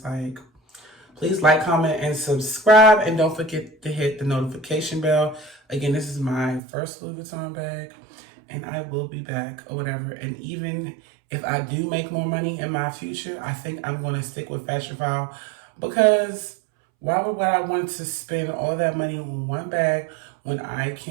Like, please like, comment, and subscribe. And don't forget to hit the notification bell. Again, this is my first Louis Vuitton bag. And I will be back or whatever. And even if I do make more money in my future, I think I'm going to stick with Fashion File. Because why would I want to spend all that money on one bag when I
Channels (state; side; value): drops out; left; at 6.6 s